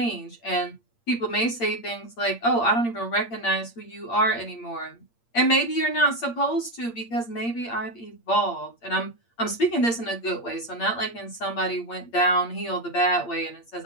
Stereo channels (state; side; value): late; right; 8.6 ms